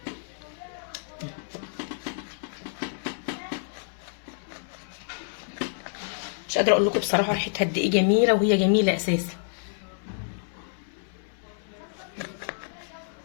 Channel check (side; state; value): right; silent; 59 dB below the other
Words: مش قادره اقول لكم بصراحه ريحتها قد ايه جميله، وهي جميله اساسا.